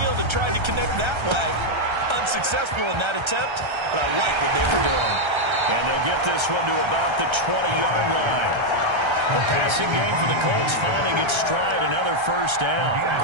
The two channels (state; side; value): late; left; 1.3 ms